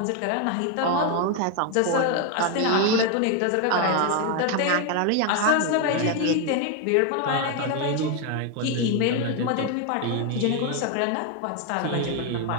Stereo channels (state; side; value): different; both; correlation 0.01